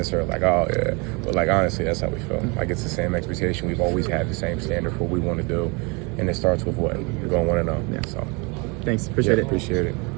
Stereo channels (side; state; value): left; quieter; 29.7 dB